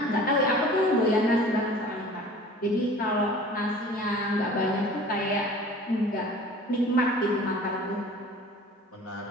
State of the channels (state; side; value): normal; both; correlation 0.44